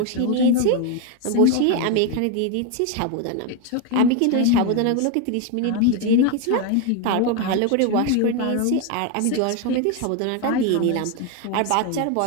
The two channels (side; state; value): both; different; correlation 0.02